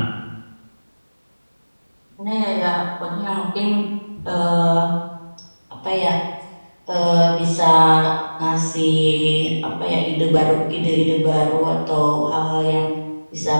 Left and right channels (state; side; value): inverted; both; correlation -1.00